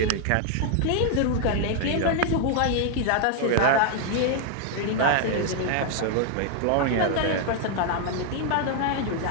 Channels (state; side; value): different; both; correlation 0.00